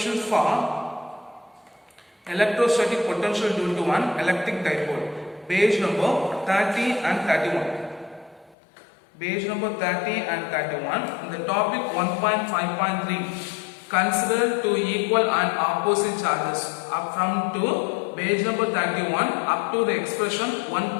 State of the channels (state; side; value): drops out; right; at 8.6 s